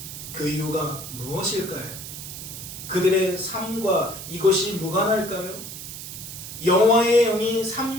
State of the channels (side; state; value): right; noise; hiss, 10 dB below the sound